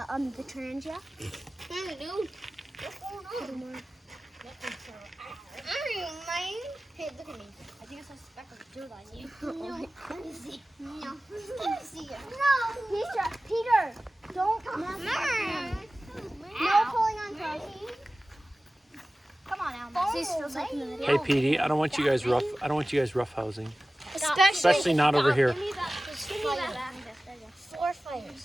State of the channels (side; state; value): both; normal; correlation 0.97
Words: Trangia. Hey, dude. What's going on? Hey, look at me. I think I saw a speck of dirt on you. No. Let me see. No. Let me see it. No. Peter, don't. No pulling on toes. Come on, Alma. Hey, Petey, I don't want you guys roughhousing. Especially not over here. Give me that. 4